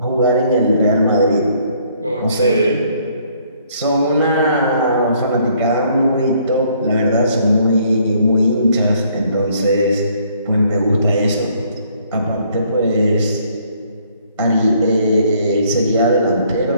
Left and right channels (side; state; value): both; inverted; correlation -0.65